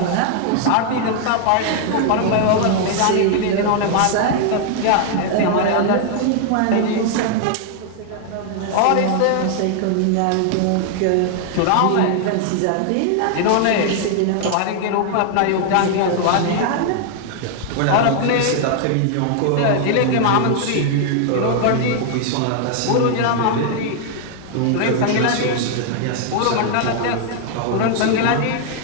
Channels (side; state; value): both; different; correlation 0.00